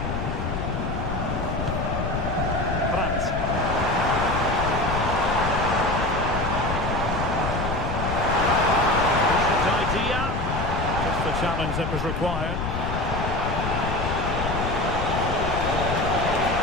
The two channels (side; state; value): left; noise; rumble, 3 dB below the sound